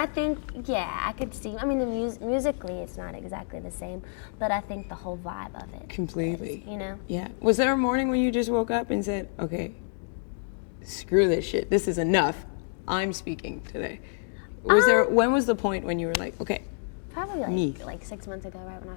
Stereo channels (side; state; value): right; silent; digital silence